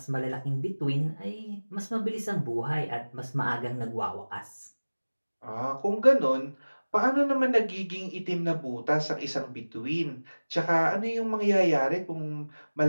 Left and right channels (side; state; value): both; inverted; correlation -1.00